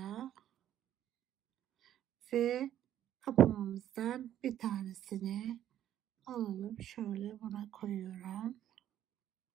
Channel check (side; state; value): left; quieter; 11.4 dB